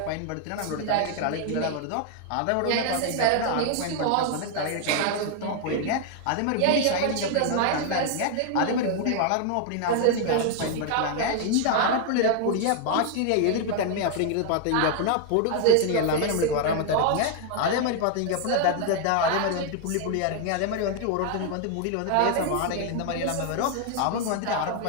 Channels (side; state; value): both; different; correlation 0.00